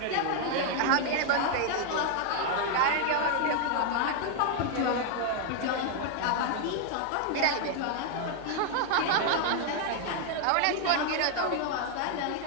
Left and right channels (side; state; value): both; different; correlation 0.00